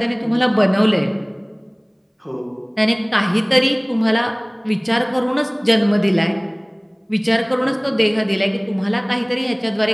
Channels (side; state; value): both; identical; correlation 1.00